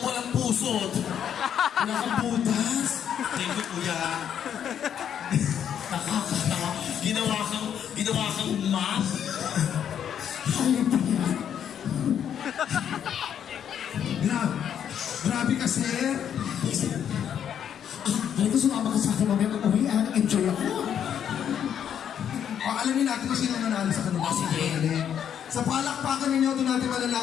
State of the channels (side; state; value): right; quieter; 9.0 dB